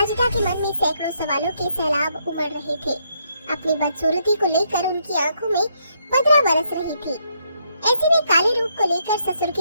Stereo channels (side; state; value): both; inverted; correlation -0.75